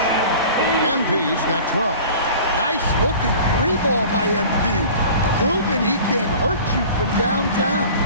MP's got 12. Nice looking 3-ball by MP. Proving he can hurt you from downtown.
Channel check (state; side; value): inverted; both; correlation -0.42